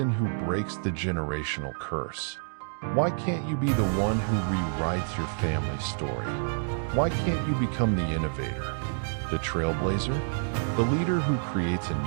who breaks the generational curse? Why can't you be the one who rewrites your family's story? Why can't you become the innovator, the trailblazer, the leader who creates a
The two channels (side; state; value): left; silent; digital silence